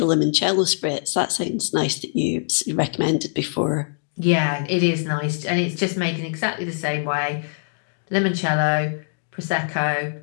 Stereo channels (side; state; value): right; silent; digital silence